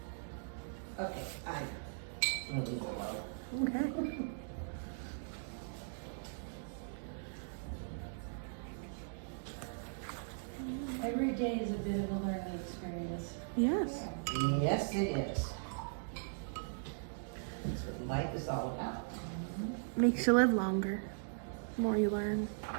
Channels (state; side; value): silent; left; digital silence